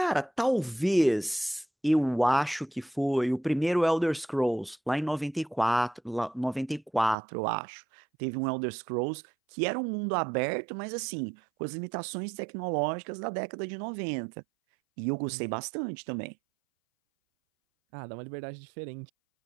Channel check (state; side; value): drops out; left; at 7.2 s